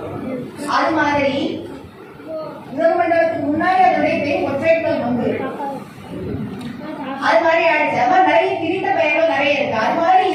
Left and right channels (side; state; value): both; identical; correlation 1.00